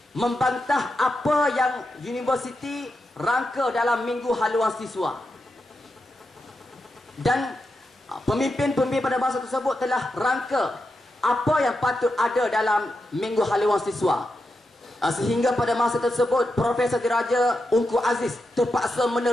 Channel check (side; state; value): both; normal; correlation 0.87